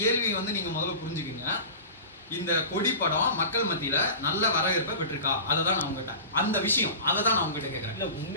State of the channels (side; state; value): both; inverted; correlation -0.33